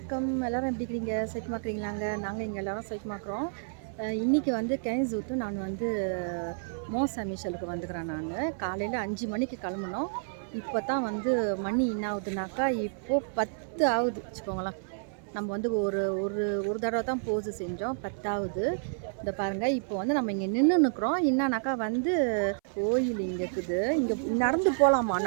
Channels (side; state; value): left; silent; 58 dB below the other